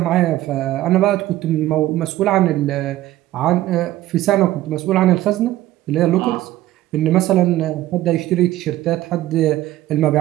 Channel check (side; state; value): left; quieter; 15.2 dB